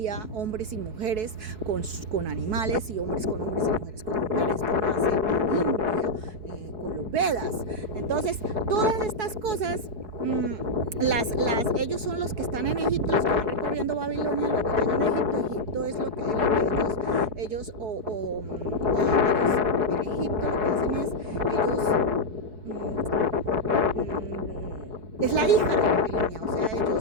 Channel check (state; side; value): late; left; 4.7 ms